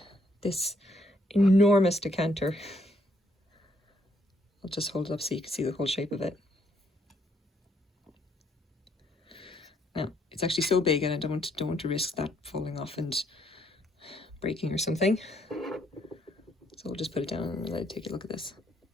this enormous decanter. I'll just hold it up so you can see the whole shape of it. Now, it's actually so big and I don't want to risk that falling off and breaking or something. So we'll just put it down and let it take a look at this.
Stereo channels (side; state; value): both; normal; correlation 0.70